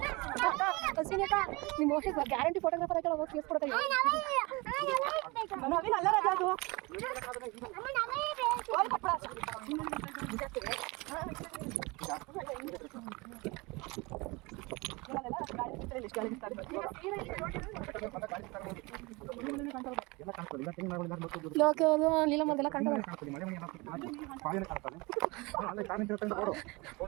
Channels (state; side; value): quieter; left; 25.3 dB